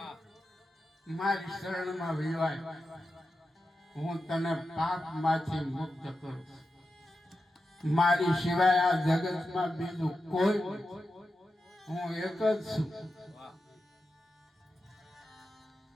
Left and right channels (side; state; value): both; normal; correlation 0.90